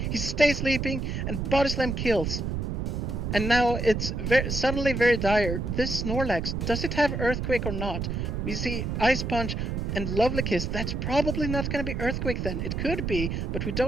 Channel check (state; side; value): noise; right; rumble, 2 dB below the sound